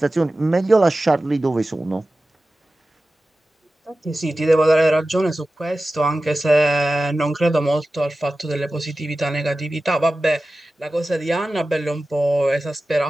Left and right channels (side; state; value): both; normal; correlation 0.95